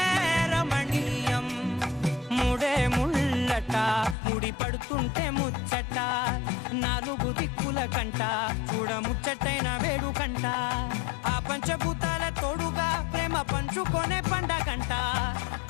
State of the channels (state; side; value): drops out; right; at 4.2 s